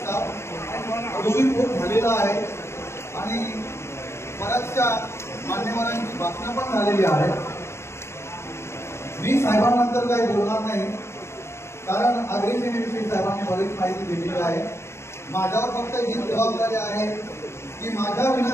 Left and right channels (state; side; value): late; right; 0.13 ms